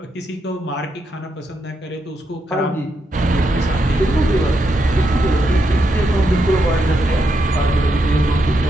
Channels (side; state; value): both; normal; correlation 0.81